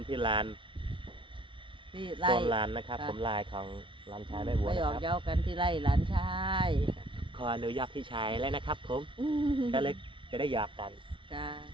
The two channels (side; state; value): left; late; 0.25 ms